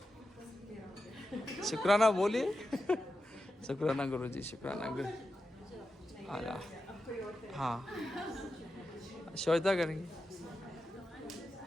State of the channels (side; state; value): both; normal; correlation 0.90